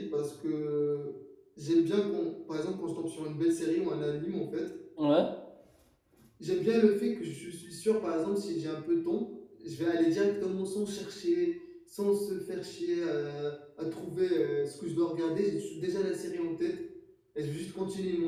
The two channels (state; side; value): identical; both; correlation 1.00